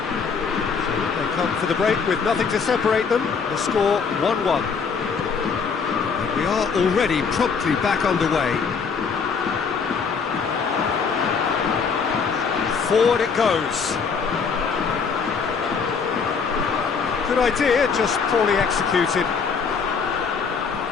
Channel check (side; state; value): right; quieter; 5.7 dB